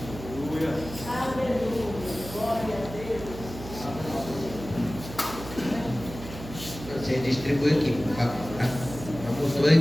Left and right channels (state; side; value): noise; right; hum, 12 dB below the sound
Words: Você distribui aqui, por favor, tá? Não botou